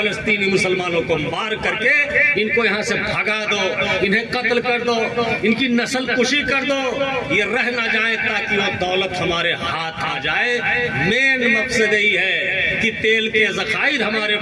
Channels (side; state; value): both; identical; correlation 1.00